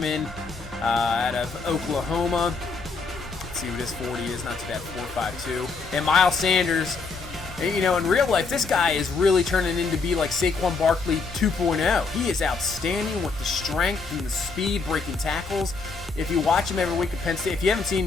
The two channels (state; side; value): quieter; right; 4.4 dB